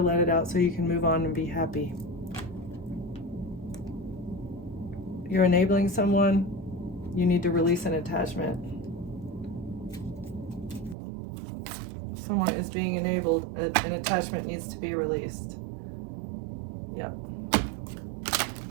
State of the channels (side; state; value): left; drops out; at 11.0 s